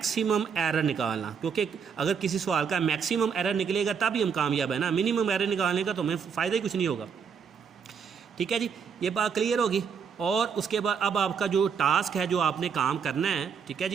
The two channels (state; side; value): quieter; left; 6.6 dB